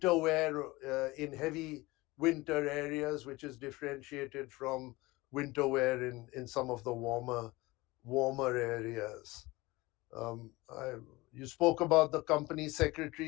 wear in heavy winter areas, which is differentiated from winter wear in some of the warmer areas. You spoke about the company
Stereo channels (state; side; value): quieter; right; 21.3 dB